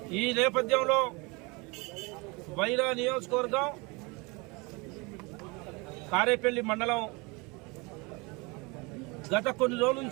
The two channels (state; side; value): quieter; left; 27.2 dB